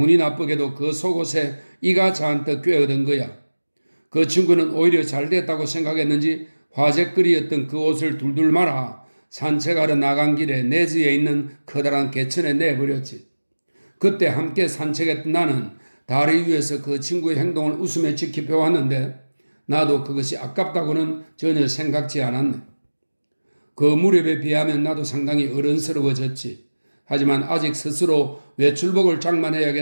나쁘게도 그 속옷에 이가 잔뜩 꿰어든 거야. 그 친구는 오히려 잘 됐다고 생각했는지 화제거리였던 그 옷을 둘둘 말아 산책하러 나간 길에 내지에 있는 커다란 개천에 내버렸지. 그때 함께 산책했던 나는 다리 위에서 그 친구의 행동을 웃으며 지켜보았는데 나도 그것이 아깝다고는 전혀 생각지 않았네. 그 무렵에 비하면 나도 상당히 어른스러워졌지. 하지만 아직 스스로 외출복을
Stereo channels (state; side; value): inverted; both; correlation -1.00